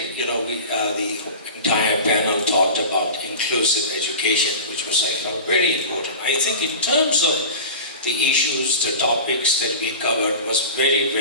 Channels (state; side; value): inverted; both; correlation -0.32